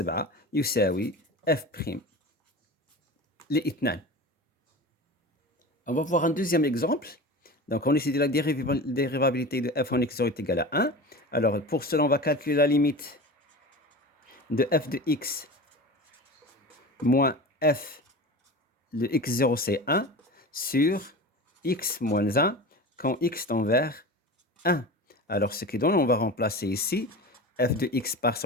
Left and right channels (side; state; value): both; normal; correlation 0.32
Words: يساوي f' ل2. On va voir un deuxième exemple. Donc, on étudie la dérivabilité de f en x0 est égal à 1. Alors, pour cela, on va calculer la limite de f de x moins f de x0, c'est 1, sur x moins 1 quand x tend vers 1. Alors, ce qui donne, on va remplacer ici f de x par